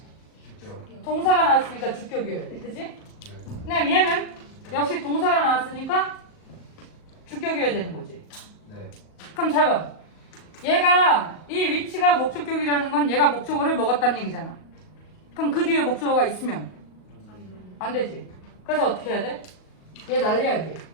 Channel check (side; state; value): right; late; 38 ms